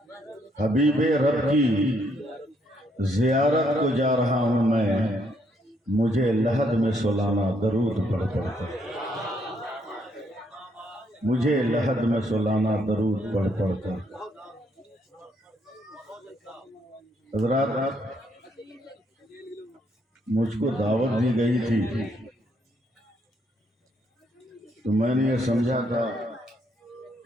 حبیب رب کی زیارت کو جا رہا ہوں میں، مجھے لحد میں سلانا درود پڑھ پڑھ کر، مجھے لحد میں سلانا درود پڑھ پڑھ کر۔ حضرات، مجھ کو دعوت دی گئی تھی تو میں نے یہ سمجھا تھا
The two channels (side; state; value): both; normal; correlation 0.72